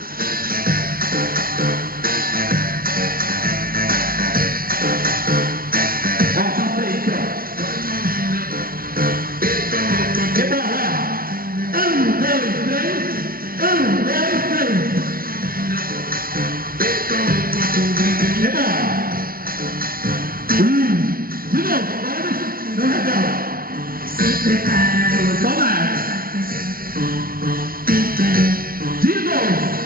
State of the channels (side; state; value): left; late; 0.42 ms